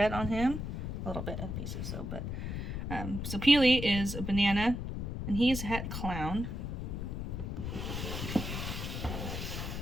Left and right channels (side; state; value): left; noise; rumble, 4 dB below the sound